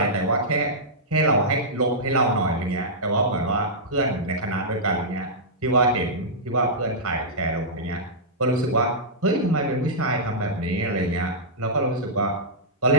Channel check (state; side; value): normal; both; correlation -0.12